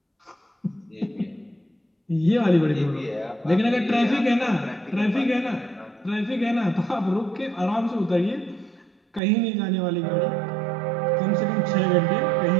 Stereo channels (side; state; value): left; drops out; at 9.2 s